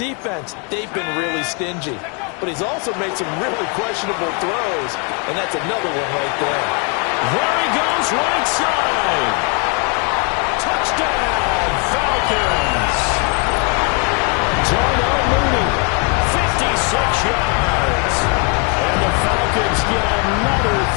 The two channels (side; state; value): right; quieter; 36.4 dB